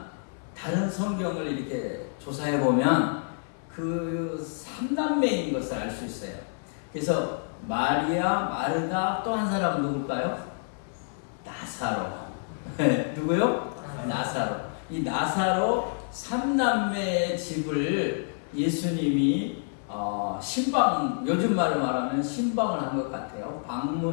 다른 성경을 이렇게 조사해 보면 그 삼남매인 것을 알 수 있어요. 그래서 마리아, 마르다, 또 한 사람은 누굴까요? 나사로. 누구요? 나사로. 이 나사로 삼남매의 집을 예수님이 신방, 요즘 말로 말하면 신방을 한 것 같아요.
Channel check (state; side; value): silent; right; 59 dB below the other